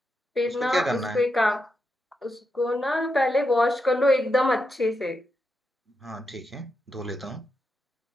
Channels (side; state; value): both; normal; correlation 0.85